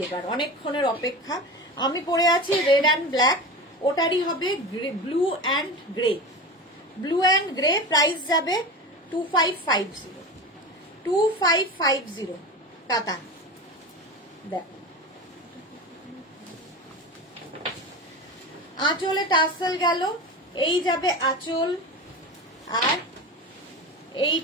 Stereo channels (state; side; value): normal; both; correlation 0.28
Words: এবার, অনেকক্ষণের অপেক্ষা, আমি পরে আছি রেড অ্যান্ড ব্ল্যাক, ওটারই হবে blue and grey. Blue and grey, price যাবে 2550, 2550 কাতান। দেখো আঁচলে টাসেল গেল, এই যাবে আঁচল, আর